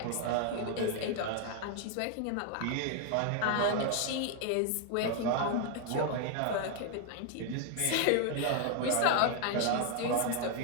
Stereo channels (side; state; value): both; different; correlation 0.00